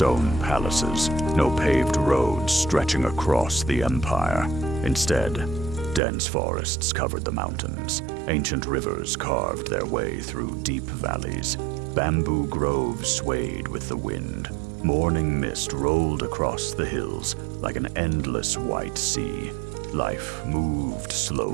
palaces, no paved roads stretching across the empire. Instead, dense forests covered the mountains. Ancient rivers carved their way through deep valleys. Bamboo groves swayed with the wind. Morning mist rolled across the hills like an endless white sea. Life moved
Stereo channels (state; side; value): drops out; left; at 6.0 s